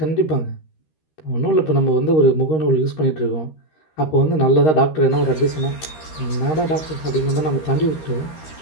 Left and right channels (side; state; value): right; late; 13 ms